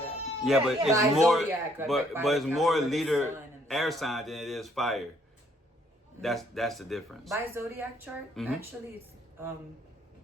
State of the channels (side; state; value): both; normal; correlation 0.66